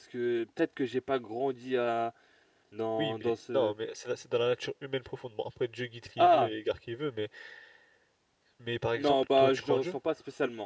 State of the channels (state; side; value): identical; both; correlation 1.00